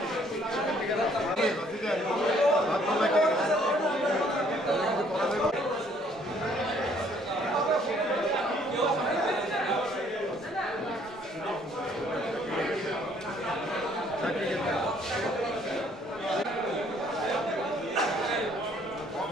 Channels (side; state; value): both; normal; correlation 0.63